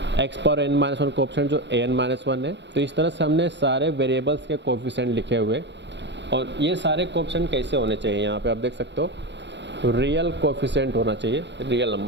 x power N minus one coefficient जो A N minus one है। तो इस तरह से हमने सारे वेरिएबल्स के कोएफिशिएंट लिखे हुए, और ये सारे कोएफिशिएंट कैसे होने चाहिए, यहाँ पे आप देख सकते हो रियल कोएफिशिएंट होना चाहिए, रियल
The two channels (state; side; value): late; left; 0.52 ms